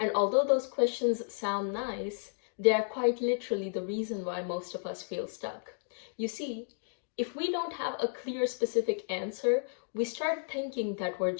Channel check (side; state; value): right; silent; digital silence